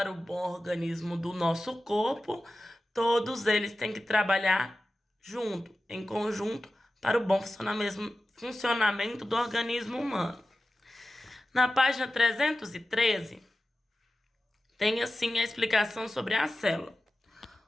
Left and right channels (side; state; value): both; normal; correlation 0.94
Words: o bom organismo do nosso corpo, todos eles têm que trabalhar junto, em conjunto, para o bom funcionamento do organismo humano. Na página 313, tem assim a explicação sobre a célula.